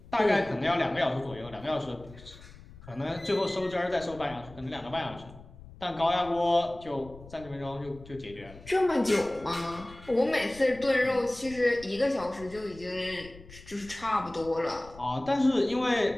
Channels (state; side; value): noise; left; rumble, 19 dB below the sound